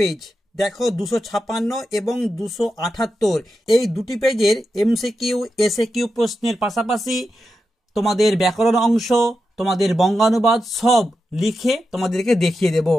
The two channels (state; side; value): normal; both; correlation 0.89